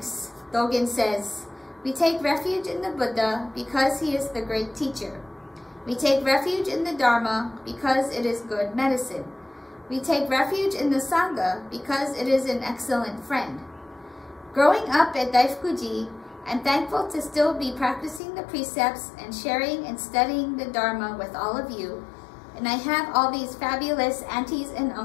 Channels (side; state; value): right; drops out; at 18.2 s